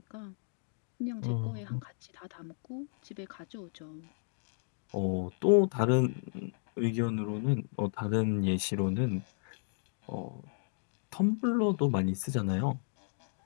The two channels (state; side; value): silent; right; digital silence